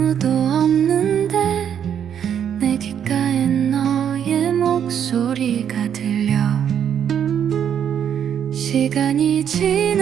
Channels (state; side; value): quieter; left; 8.8 dB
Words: 없는데 내 귓가에 너의 목소리가 들려. 시간이